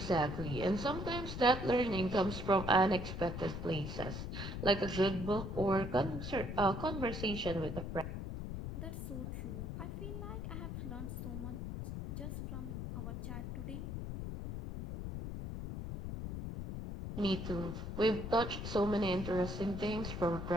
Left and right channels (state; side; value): noise; left; rumble, 5 dB below the sound